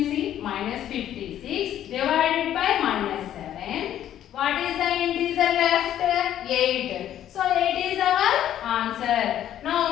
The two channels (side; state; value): right; quieter; 11.3 dB